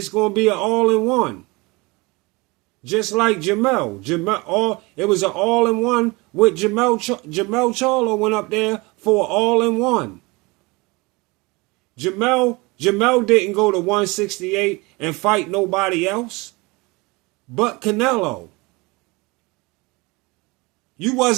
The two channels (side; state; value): left; quieter; 25.1 dB